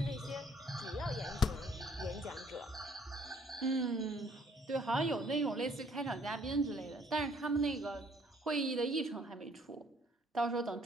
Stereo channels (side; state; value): both; normal; correlation 0.62